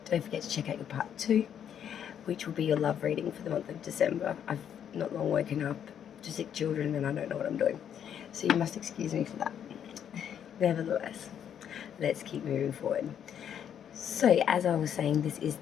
Don't forget to check out your part two, which will be your love reading for the month of December. I've not long woken up to sick children and I don't know what I'm doing, so you must excuse me for that. Nevertheless, let's keep moving forward. So as I was saying, this is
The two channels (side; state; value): right; quieter; 9.0 dB